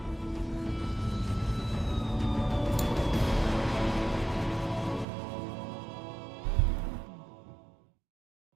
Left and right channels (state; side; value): drops out; left; at 5.1 s